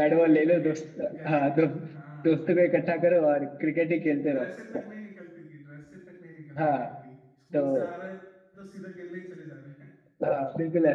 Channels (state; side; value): identical; both; correlation 1.00